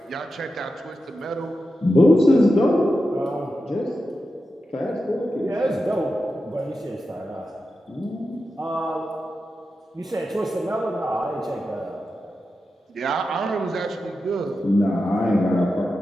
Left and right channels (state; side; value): normal; both; correlation 0.90